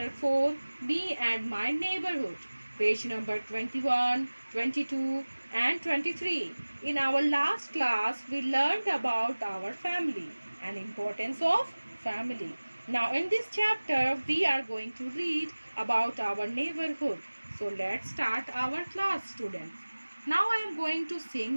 4, Me and My Neighborhood, page number 21, 22 and 23. In our last class, we learned about our family and importance of family. Now in this chapter, we are going to read about our neighborhood. So let's start our class, students. Now I am going to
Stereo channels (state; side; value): inverted; both; correlation -1.00